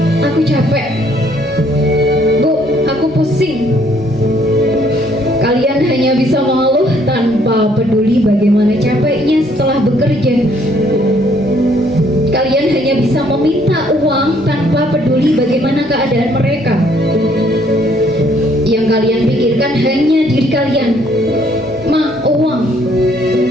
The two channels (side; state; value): both; normal; correlation 0.65